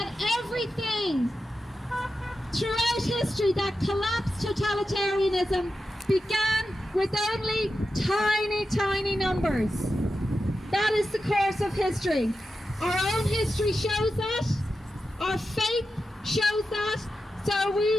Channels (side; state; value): both; normal; correlation 0.90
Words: everything throughout history that collapsed totalitarianism began with only tiny, tiny numbers. That is the course of history. Our own history shows that. Our faith shows that. So